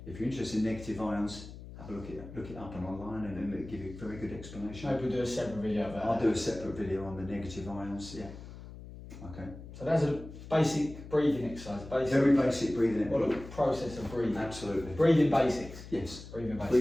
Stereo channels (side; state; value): left; noise; hum, 14 dB below the sound